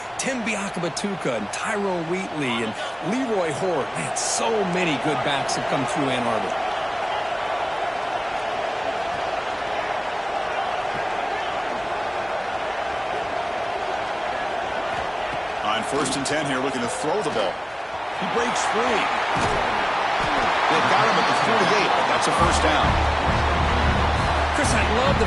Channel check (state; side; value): identical; both; correlation 1.00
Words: Tim Biakabatuka and Tyrone Wheatley and Leroy Hort. Man, so many good backs have come through Ann Arbor. On 1st and 10 here, looking to throw the ball. He breaks free. They've got him at the 48, but that's a first down. Chris, I love